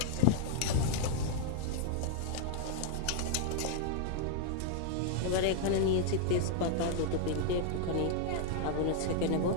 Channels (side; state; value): both; different; correlation 0.00